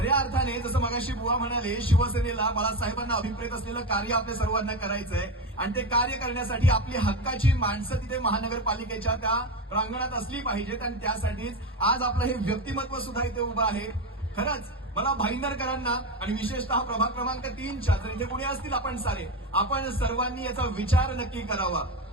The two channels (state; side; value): normal; both; correlation 0.18